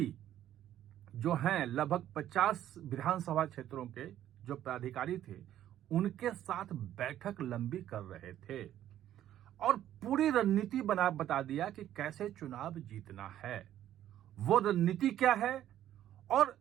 जो हैं, लगभग 50 विधानसभा क्षेत्रों के जो पदाधिकारी थे, उनके साथ बैठक लंबी कर रहे थे और पूरी रणनीति बता दिया कि कैसे चुनाव जीतना है। वो रणनीति क्या है और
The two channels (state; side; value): quieter; left; 11.9 dB